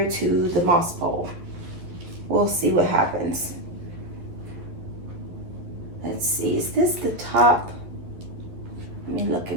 to the moss pole. We'll see what happens. Let's see, is this the top? Let me look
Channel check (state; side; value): late; left; 11 ms